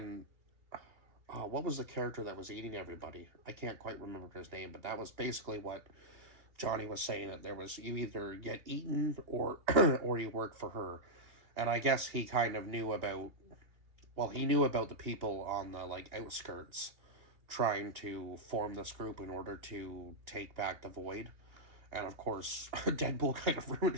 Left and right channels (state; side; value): late; left; 2.9 ms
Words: what was the character that was eating everybody? I can't quite remember his name, but that was basically what Johnny was saying, that there was, you either get eaten or or you work for her. And I guess he kind of knew about, well, he knew about the people on the like outskirts trying to form this group in order to take back the void. And of course, Deadpool kind of ruined